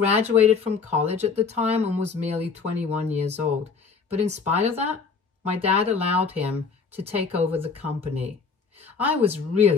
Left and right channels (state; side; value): quieter; right; 5.2 dB